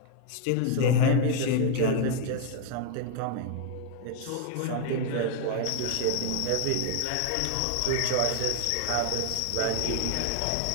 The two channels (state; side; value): different; both; correlation 0.00